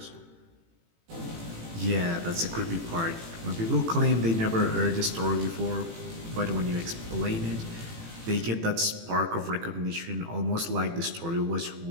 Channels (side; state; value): left; late; 18 ms